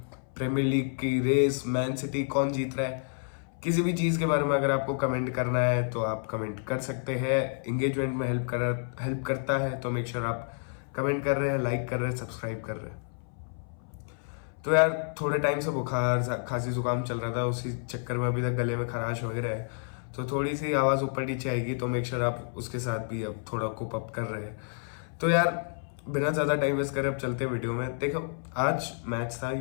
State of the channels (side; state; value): right; silent; 58 dB below the other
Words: प्रीमियर लीग की रेस, मैन सिटी कौन जीत रहा है, किसी भी चीज़ के बारे में अगर आपको कमेंट करना है तो आप कमेंट कर सकते हैं। इंगेजमेंट में हेल्प करता है, तो मेक श्योर आप कमेंट कर रहे हैं, लाइक कर रहे हैं, सब्सक्राइब कर रहे हैं। तो यार, थोड़े टाइम से बुखार खांसी जुकाम चल रहा था, उसी चक्कर में अभी तक गले में खराश वगैरह है, तो थोड़ी सी आवाज़ ऊपर नीचे आएगी, तो मेक श्योर आप उसके साथ भी अब थोड़ा कोप अप कर रहे हैं। तो यार, बिना ज़्यादा टाइम वेस्ट करे अब चलते हैं वीडियो में। देखो, आज मैच था